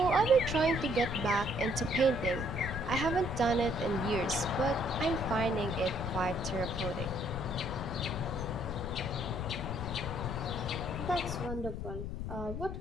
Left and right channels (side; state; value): left; noise; rumble, 5 dB below the sound